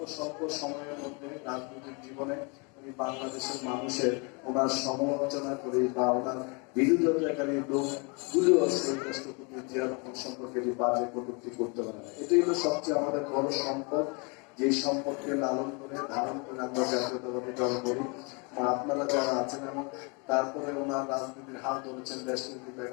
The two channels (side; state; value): right; quieter; 32.1 dB